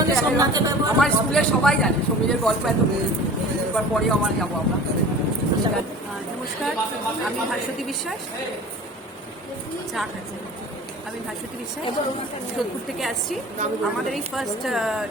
আমার স্কুলের সবাই জানে সমীরের গল্প এত এবার পরেও আমার যাবো আমরা। নমস্কার, আমি ভাস্বতী বিশ্বাস। আমি ভাস্বতী বিশ্বাস, যোধপুর থেকে আসছি। আমাদের এই ফার্স্ট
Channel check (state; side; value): normal; both; correlation 0.41